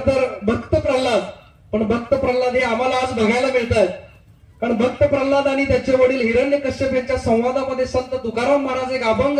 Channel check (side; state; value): both; identical; correlation 1.00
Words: तर भक्त प्रल्हाद, पण भक्त प्रल्हाद हे आम्हाला आज बघायला मिळत आहेत. कारण भक्त प्रल्हाद आणि त्याचे वडील हिरण्यकश्यप यांच्या संवादामध्ये संत तुकाराम महाराज एक अभंग